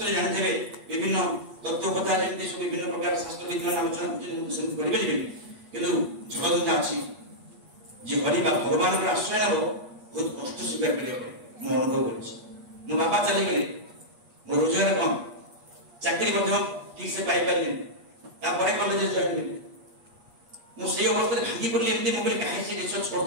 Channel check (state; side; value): late; left; 8.3 ms